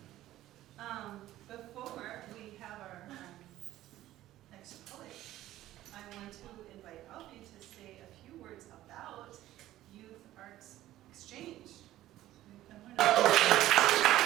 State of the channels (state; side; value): quieter; left; 14.5 dB